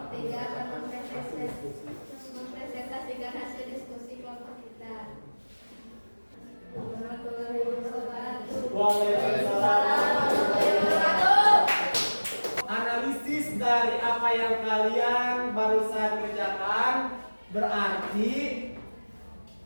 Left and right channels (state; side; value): inverted; both; correlation -1.00